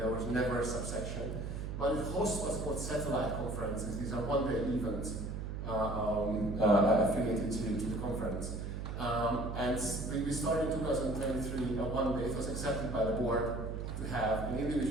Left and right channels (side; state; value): right; noise; hum, 5 dB below the sound